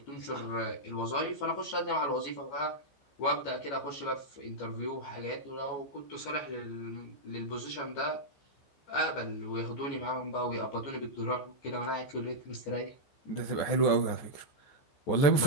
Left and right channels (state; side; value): late; right; 14 ms